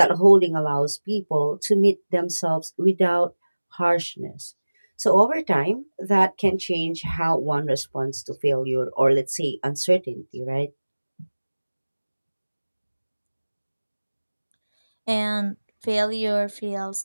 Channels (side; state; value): both; inverted; correlation -1.00